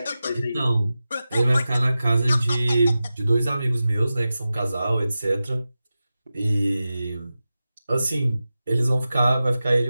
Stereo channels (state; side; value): inverted; both; correlation -0.94